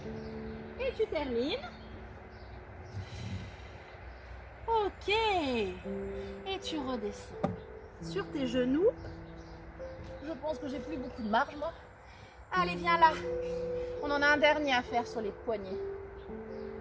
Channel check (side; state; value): both; identical; correlation 1.00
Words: Et tu termines. Ok. Et tu redescends sur tes genoux. Je pense que j'ai plus beaucoup de marge, moi. Allez, viens là. On en a un dernier à faire sur les poignets.